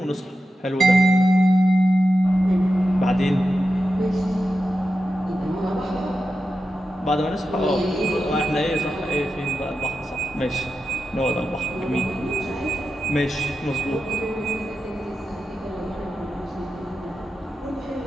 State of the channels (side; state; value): both; normal; correlation 0.90